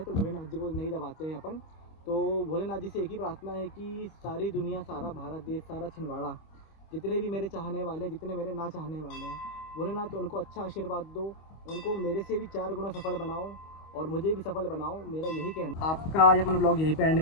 तो भोलेनाथ जी को नहीं दबाते हैं अपन। तो भोलेनाथ जी से एक ही प्रार्थना है कि सारी दुनिया, सारा भारत देश, सारा छिंदवाड़ा, जितने भी मेरे चाहने वाले, जितने मेरे ना चाहने वाले हैं, भोलेनाथ उनको अच्छा आशीर्वाद दो, उनको मेरे से भी 4 गुना सफल बनाओ और मुझे भी सफल बनाओ, मेरा यही कहना। आपका आज अपन ब्लॉग यहीं पे एंड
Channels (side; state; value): right; late; 25 ms